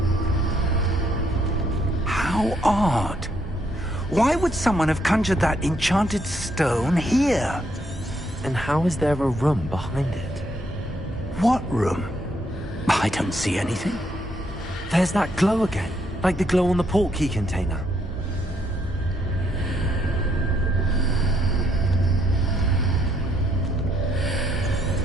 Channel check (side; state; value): both; normal; correlation 0.73